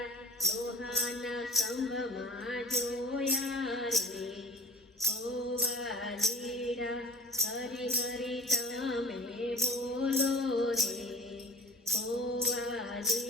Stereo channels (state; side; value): normal; both; correlation 0.41